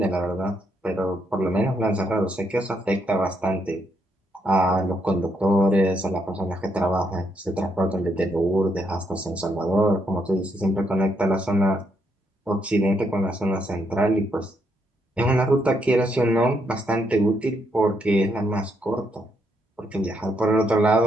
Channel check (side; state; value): both; normal; correlation 0.76